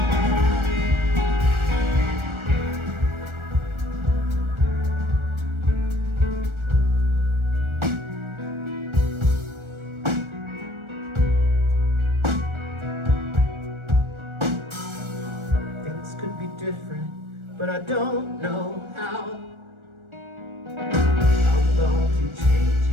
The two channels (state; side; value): late; left; 1.4 ms